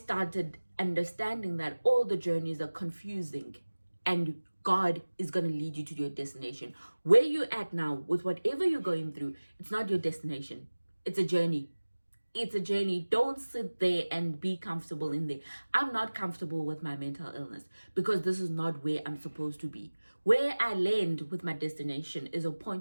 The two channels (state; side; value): inverted; both; correlation -1.00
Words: understanding that all the journeys are confusing and God is going to lead you to your destination. Where you're at now, with whatever you're going through, it's not your destination. It's a journey. It's a journey. Don't sit there and be comfortable in there. I'm not comfortable with my mental illness because this is not where I'm supposed to be. Where I land with my destination is a